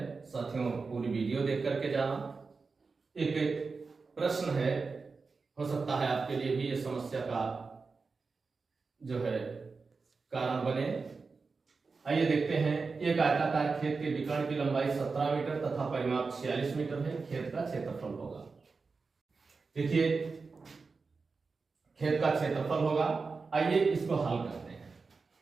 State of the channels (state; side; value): quieter; left; 4.5 dB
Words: साथियों, पूरी वीडियो देख करके जाना। एक प्रश्न है, हो सकता है आपके लिए भी ये समस्या का जो है कारण बने। आइए देखते हैं। एक आयताकार खेत के विकर्ण की लंबाई 17 मीटर तथा परिमाप 46 मीटर है। खेत का क्षेत्रफल होगा। देखिए, खेत का क्षेत्रफल होगा। आइए इसको हल करते हैं।